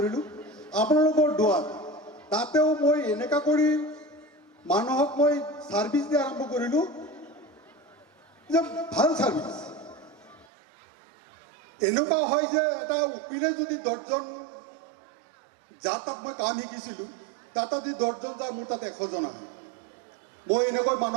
আপোনালোকৰ দোৱাত। তাতেও মই এনেকুৱা কৰি মানুহক মই ছাৰ্ভিচ দিয়া আৰম্ভ কৰিলোঁ যে ভাল ছাৰ্ভিচ। এনেকুৱা হয় যে এটা উকিলে যদি 10জন যাৰ তাত মই কাম শিকিছিলোঁ, তাত যদি 10জন যায়, মোৰ তাত 100জন আহে। মই এনেকৈ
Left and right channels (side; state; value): left; drops out; at 10.5 s